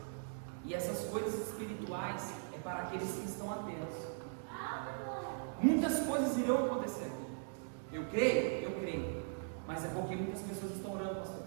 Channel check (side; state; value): left; silent; digital silence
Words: e essas coisas espirituais é para aqueles que estão atentos. Muitas coisas irão acontecer aqui. Eu creio, mas é porque muitas pessoas estão orando, pastor.